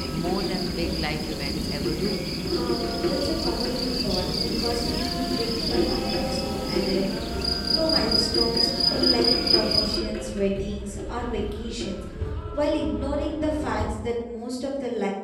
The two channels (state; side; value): identical; both; correlation 1.00